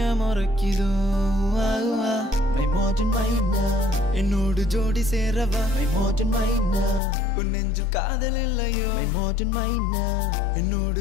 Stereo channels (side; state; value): right; drops out; at 7.0 s